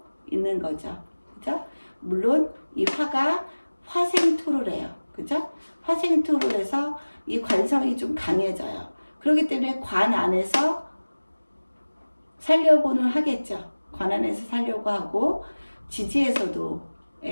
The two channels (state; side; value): inverted; both; correlation -1.00